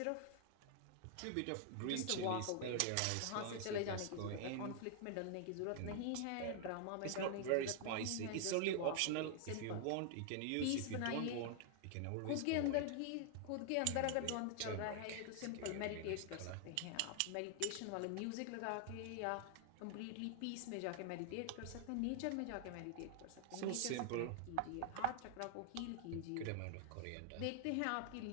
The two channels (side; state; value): both; different; correlation 0.00